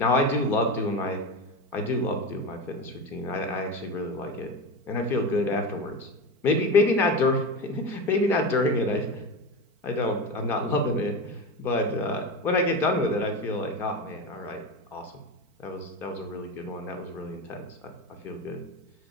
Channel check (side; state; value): left; late; 4.5 ms